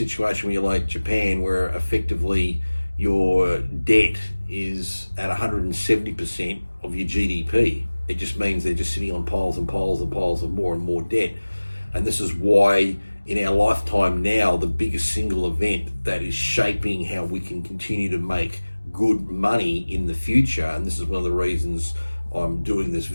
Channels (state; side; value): inverted; both; correlation -1.00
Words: where you're like Japan, where effectively your debt is at 170% of your GDP. It just means they're just sitting on piles and piles and piles of more and more debt. And this is why in our lifetime now, the biggest single event that is shaping how we can continue to make good money in the future, and this is one of the reasons I'm doing this